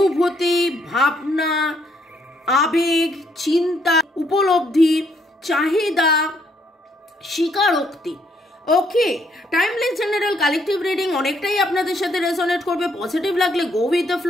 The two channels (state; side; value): normal; both; correlation 0.71